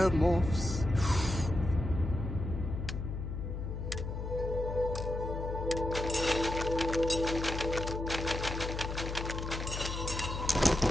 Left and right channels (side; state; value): left; noise; hum, 5 dB below the sound